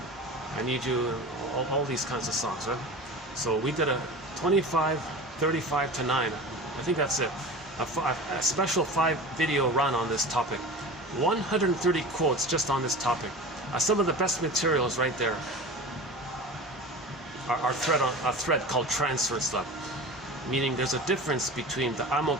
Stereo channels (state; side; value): normal; both; correlation 0.34